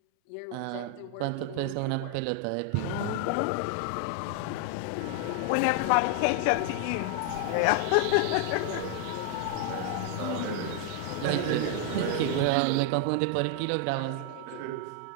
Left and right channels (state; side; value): different; both; correlation 0.00